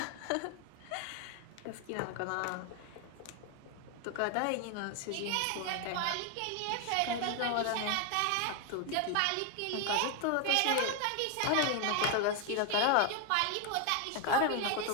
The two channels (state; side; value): different; both; correlation 0.01